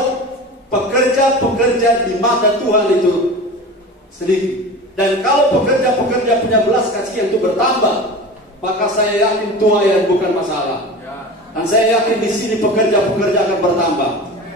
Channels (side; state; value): both; normal; correlation 0.33